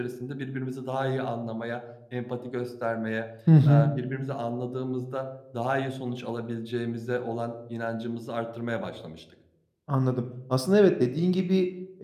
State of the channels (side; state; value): both; identical; correlation 1.00